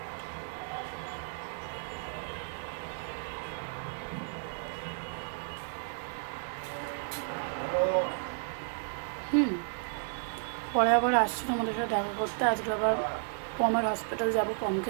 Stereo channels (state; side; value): silent; left; 56 dB below the other